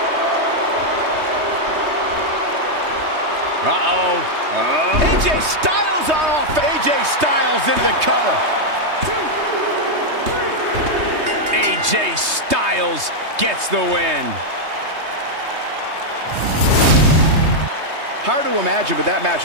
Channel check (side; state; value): left; late; 3.2 ms